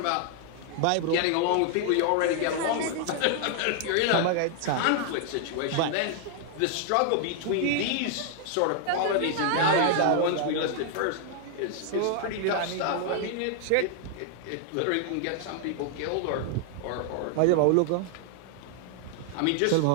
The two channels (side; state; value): both; different; correlation 0.00